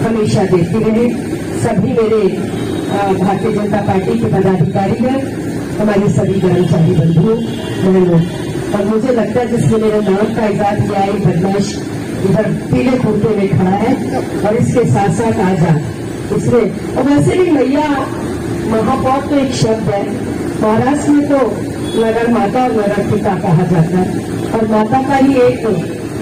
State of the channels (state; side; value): identical; both; correlation 1.00